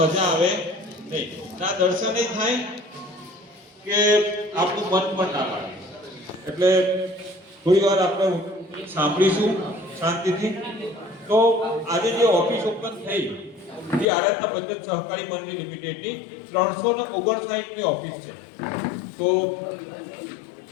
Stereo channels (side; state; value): right; drops out; at 14.1 s